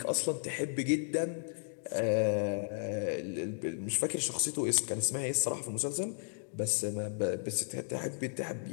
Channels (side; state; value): right; silent; digital silence